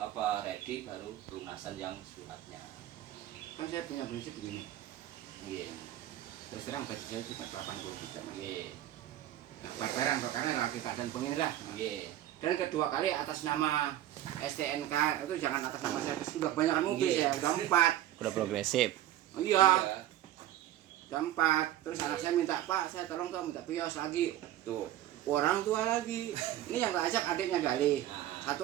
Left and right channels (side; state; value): left; quieter; 13.1 dB